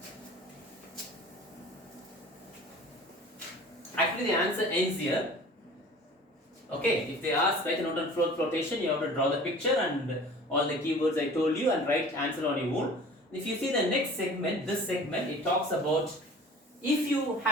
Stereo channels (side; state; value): both; normal; correlation 0.44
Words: Actually, the answer ends here. Okay, if they ask write a note on froth flotation, you have to draw the picture and all the keywords I told you and write answer on your own. If you see the next segment, this segment, it talks about if